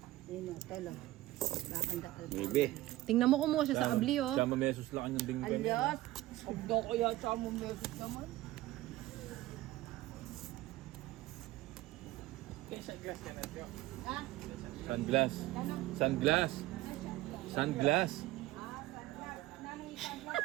Yun o, telo. Bakanda alpha. Maybe. Tingnan mo kumuha siya sa abli, oh. Sama mesos lang ang dinggan niya. Alyos! Agdo ko yan sa mong mesos naman. Ha? Sunglass. Sunglass. Sunglass.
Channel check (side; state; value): left; quieter; 16.8 dB